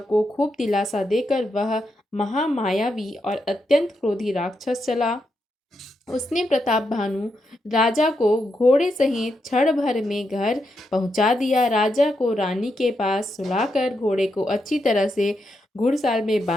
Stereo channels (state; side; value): normal; both; correlation 0.83